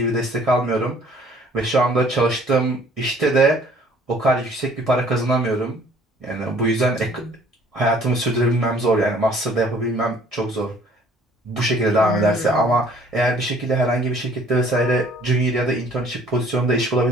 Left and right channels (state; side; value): normal; both; correlation 0.56